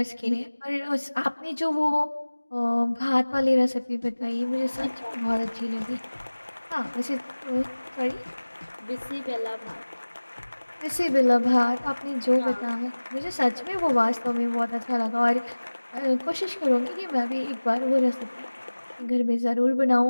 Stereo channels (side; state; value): both; inverted; correlation -1.00